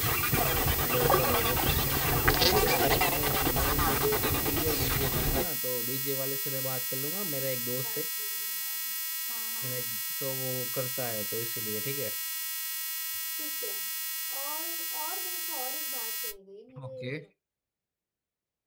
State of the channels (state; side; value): identical; both; correlation 1.00